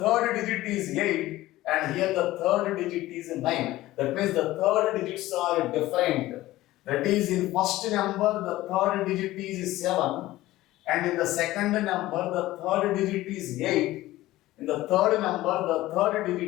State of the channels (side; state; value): right; quieter; 16.6 dB